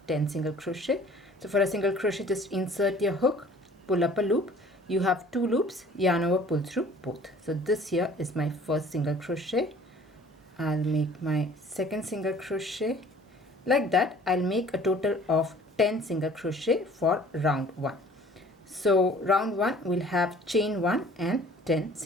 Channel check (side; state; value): both; normal; correlation 0.51